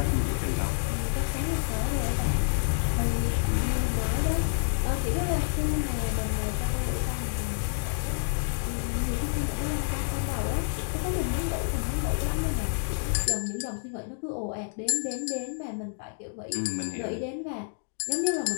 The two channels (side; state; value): right; silent; digital silence